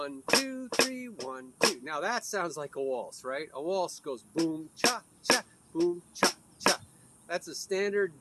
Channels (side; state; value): both; identical; correlation 1.00